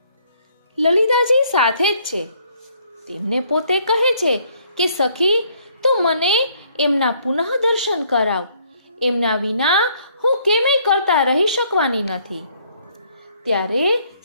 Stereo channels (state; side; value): inverted; both; correlation -0.65